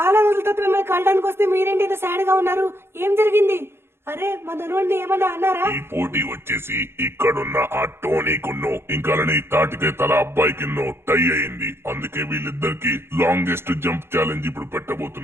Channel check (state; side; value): late; left; 0.12 ms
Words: రోజుల తర్వాత మిమ్మల్ని కలడానికి వస్తే మీరేంటి ఇంత సాడ్ గా ఉన్నారు, ఏం జరిగింది? అరే మా ధనువుని ఏమన్నా అన్నారా? ఈ పోటీ వచ్చేసి ఇక్కడున్న ఆ టోనీకున్నో ఇంకా తాటికే తల అబ్బాయికిన్నో టై అయింది, అందుకే వీళ్ళిద్దరికి లాంగెస్ట్ జంప్ ఛాలెంజ్ ఇప్పుడు